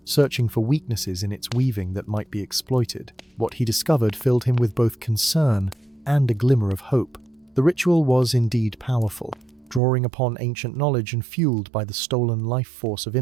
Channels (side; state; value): left; drops out; at 9.8 s